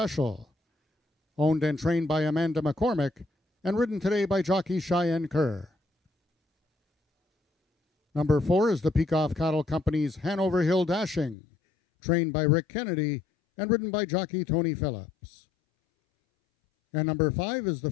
owned and trained by Amanda McCormick and ridden today by jockey Cheyenne Kerr. Number 4 is the Peacock Cattle Company's Hanover Hill Dashing, trained by Rick Kennedy and ridden by jockey Tony Phillips. And number 5 is the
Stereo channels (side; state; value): right; drops out; at 11.4 s